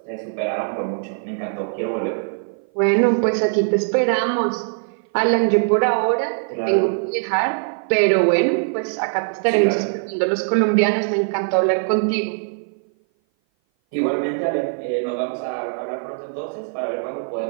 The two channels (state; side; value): silent; left; 57 dB below the other